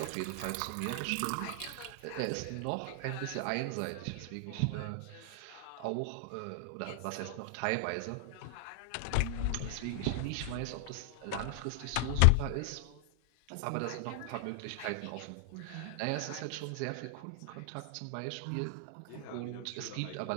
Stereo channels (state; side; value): different; both; correlation -0.01